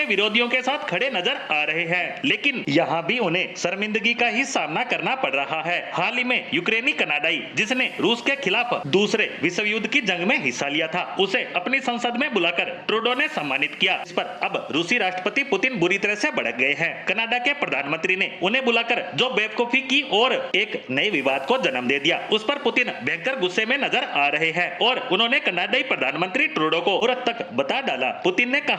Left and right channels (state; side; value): identical; both; correlation 1.00